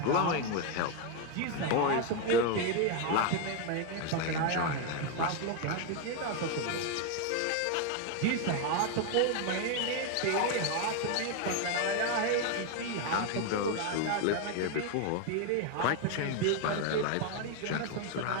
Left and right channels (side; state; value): both; different; correlation 0.01